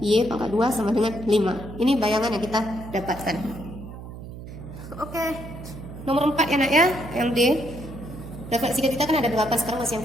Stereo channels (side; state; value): right; noise; hum, 12 dB below the sound